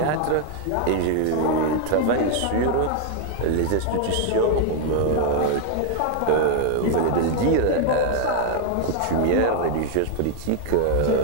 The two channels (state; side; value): different; both; correlation 0.00